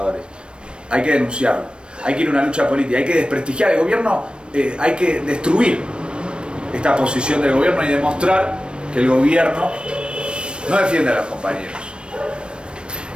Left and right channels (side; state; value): left; late; 0.056 ms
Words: Hay que denunciarlo, hay que ir a una lucha política, hay que desprestigiar el gobierno, hay que destruir esta posición del gobierno y demostrar que el gobierno no defiende a los compañeros.